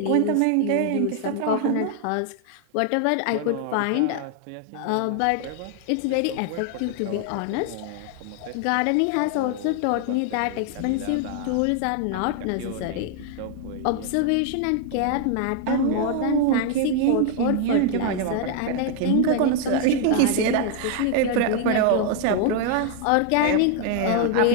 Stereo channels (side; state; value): both; different; correlation 0.00